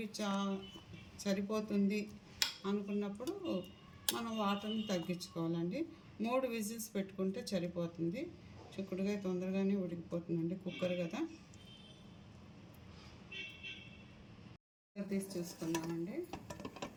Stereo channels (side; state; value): both; identical; correlation 1.00